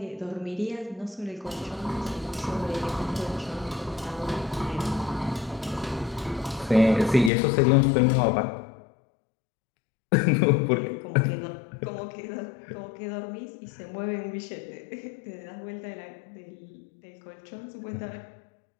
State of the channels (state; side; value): drops out; right; at 7.3 s